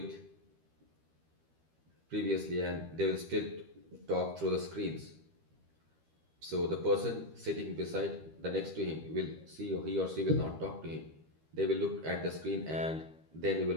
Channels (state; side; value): late; left; 13 ms